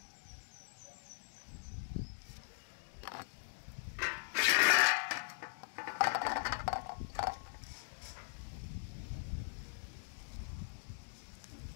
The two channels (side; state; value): right; silent; digital silence